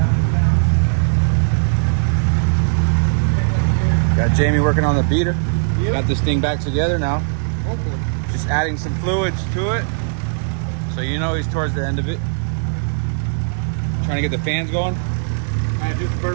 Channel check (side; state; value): left; silent; 62 dB below the other